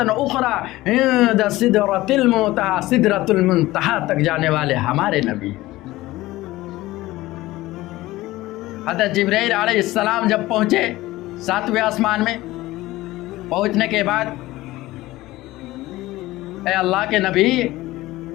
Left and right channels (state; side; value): quieter; right; 17.8 dB